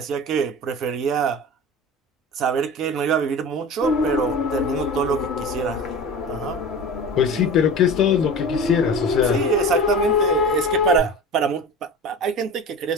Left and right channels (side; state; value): both; normal; correlation 0.33